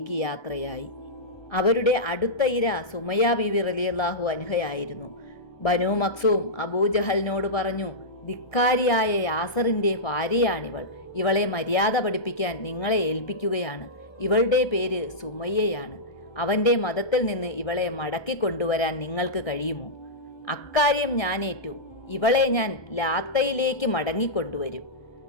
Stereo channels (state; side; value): late; right; 1.2 ms